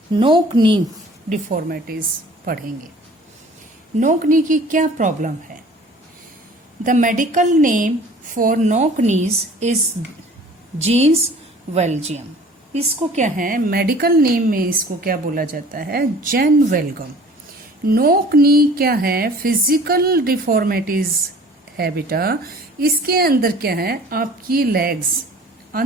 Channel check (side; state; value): both; normal; correlation 0.49